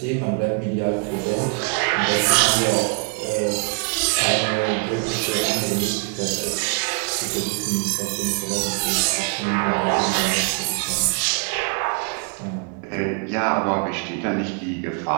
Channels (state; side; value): quieter; left; 37.7 dB